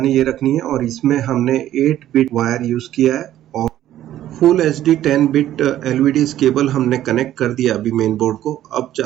ये रखनी है। और इसमें हमने 8 बिट वायर यूज़ किया है और full HD 10 bit LVDS cable हमने कनेक्ट कर दिया अभी मेन बोर्ड को। अब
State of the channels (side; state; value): left; quieter; 12.6 dB